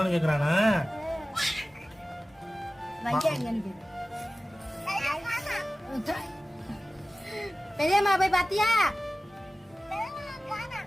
கேக்குறானா? பெரியம்மா போய் பாத்தியா?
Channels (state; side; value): normal; both; correlation 0.97